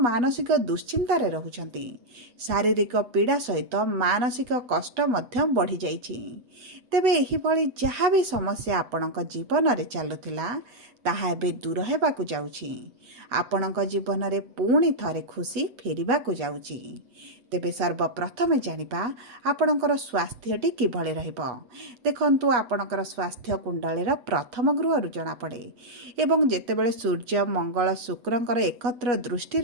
मानसिक दुश्चिंतार रहुछंती। शारीरिक पीड़ा सहित मानसिक कष्ट मध्य बढ़ी जाइछि। तेबे एही भली जहाँ भी समस्या आपणक जीवन रे चलुथिला ତାହା ଏବେ ଦୂର ହେବାକୁ ଯାଉଛି। ଆପଣଙ୍କ ଜୀବନରେ ପୁଣି ଥରେ ଖୁସି ଫେରିବାକୁ ଯାଉଛି। ତେବେ ସର୍ବପ୍ରଥମେ ଜାଣିବା ଆପଣଙ୍କର ସ୍ୱାସ୍ଥ୍ୟଟି କିଭଳି ରହିବ। ଦେଖନ୍ତୁ, ଆପଣଙ୍କର ସ୍ୱାସ୍ଥ୍ୟ କୁଣ୍ଡଳୀର ପ୍ରଥମ ଗୃହରୁ ଜଣାପଡ଼େ ଏବଂ ଯେତେବେଳେ ସୂର୍ଯ୍ୟ, ମଙ୍ଗଳ, ଶୁକ୍ରଙ୍କର ଏକତ୍ର ଦୃଷ୍ଟି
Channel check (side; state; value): left; late; 8.0 ms